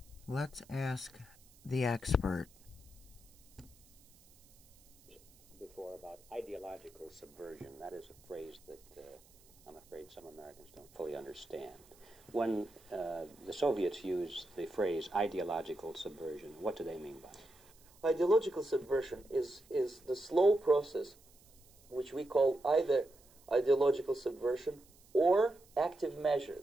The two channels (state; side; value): noise; right; hiss, 27 dB below the sound